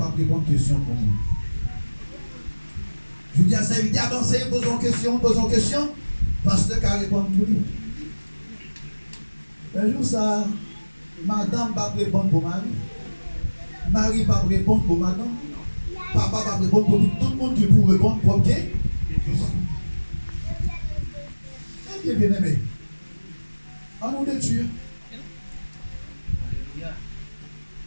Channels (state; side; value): inverted; both; correlation -1.00